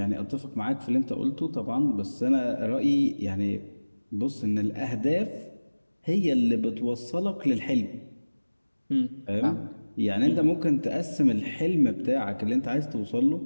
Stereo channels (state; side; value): inverted; both; correlation -1.00